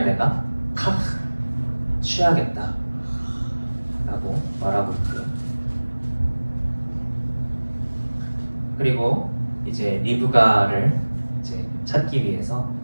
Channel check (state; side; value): inverted; both; correlation -1.00